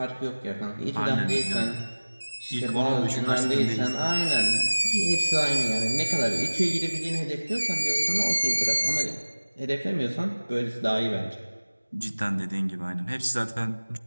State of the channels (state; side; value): inverted; both; correlation -1.00